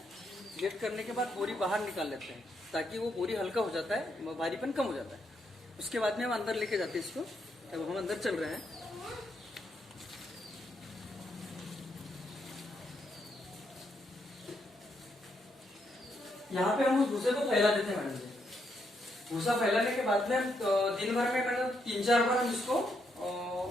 डिलीट करने के बाद बोरी बाहर निकाल लेते हैं, ताकि वो बोरी हल्का हो जाता है, भारीपन कम हो जाता है। उसके बाद में हम अंदर लेके जाते हैं इसको। अब हम अंदर चल रहे हैं। यहाँ पे हम उस भूसे को फैला देते हैं मैडम जी। भूसा फैलाने के बाद में हम दिन भर में मैडम 3-4 बार हम इसको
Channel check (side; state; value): both; normal; correlation 0.78